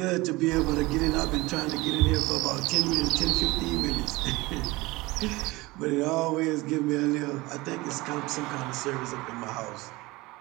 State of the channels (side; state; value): left; quieter; 21.5 dB